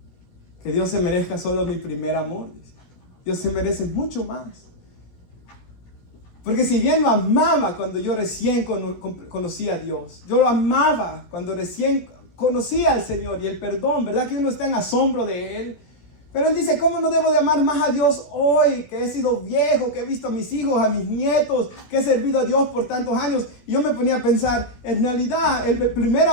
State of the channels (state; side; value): late; right; 17 ms